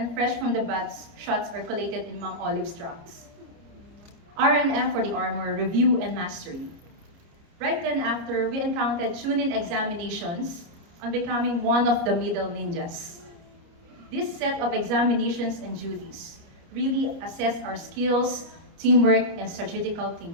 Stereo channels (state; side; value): late; left; 29 ms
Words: fresh from the baths shots are collated in Ma'am Olive's tracks. RNM for the armor, review, and mastery. Right then after, we encountered tune-in examinations on becoming one of the middle ninjas. This set of examinations and duties really assess our skills, teamwork, and strategical